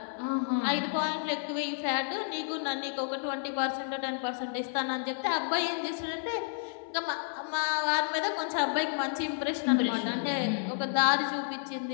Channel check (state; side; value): silent; right; 57 dB below the other